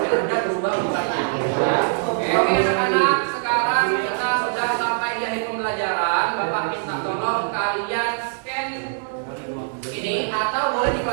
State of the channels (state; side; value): silent; left; digital silence